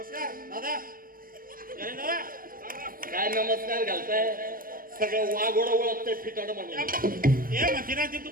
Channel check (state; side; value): late; left; 0.41 ms